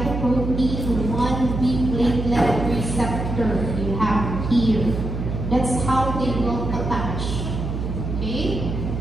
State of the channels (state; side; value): noise; right; hum, 4 dB below the sound